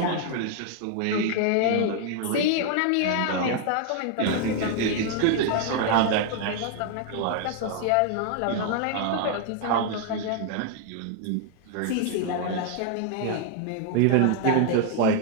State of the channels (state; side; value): different; both; correlation 0.00